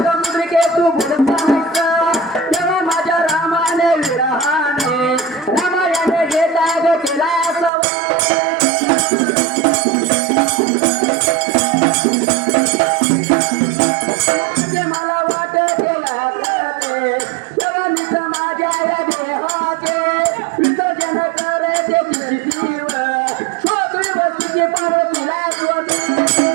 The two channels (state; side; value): drops out; left; at 7.7 s